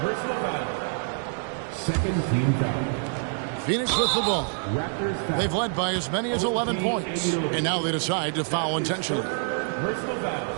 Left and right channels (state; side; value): silent; left; 61 dB below the other